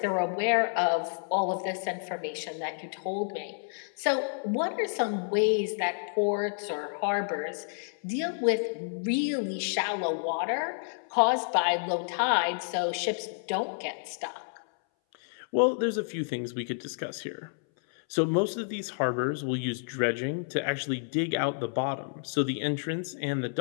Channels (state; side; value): silent; right; 58 dB below the other